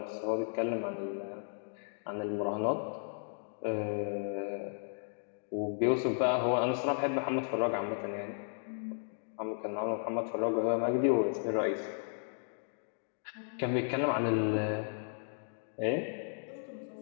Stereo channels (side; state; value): right; silent; digital silence